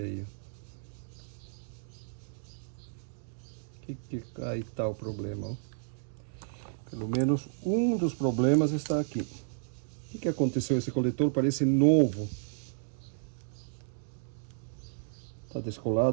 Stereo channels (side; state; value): left; silent; digital silence